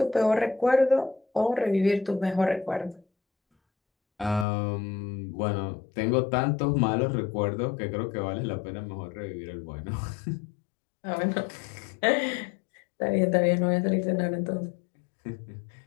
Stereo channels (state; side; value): drops out; right; at 4.5 s